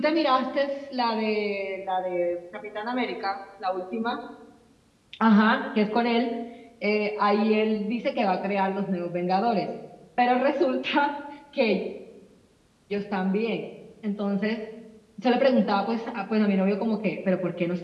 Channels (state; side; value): identical; both; correlation 1.00